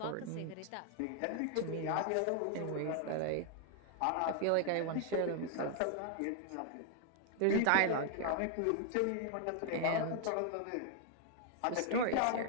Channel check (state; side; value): different; both; correlation 0.00